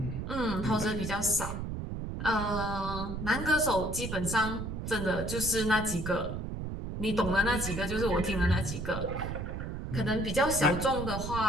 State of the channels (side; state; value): right; noise; rumble, 5 dB below the sound